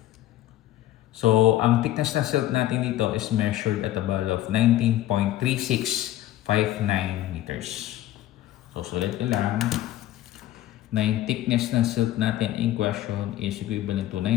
So, ang thickness na silt natin dito is measured at a value of 19.3659 meters. So, sulit nyo lang na yung thickness ng silt natin in question is equivalent to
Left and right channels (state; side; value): quieter; right; 14.1 dB